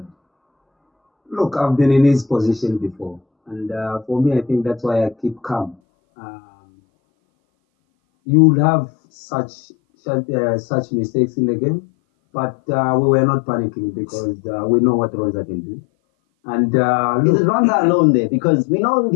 Look, I've been in his position before, and for me, I think that's why I keep calm. You'll have such mistakes in the game, but we were not panicking because we know what Ronza can do. And is it Ronza alone there? Because we know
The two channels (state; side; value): drops out; right; at 5.8 s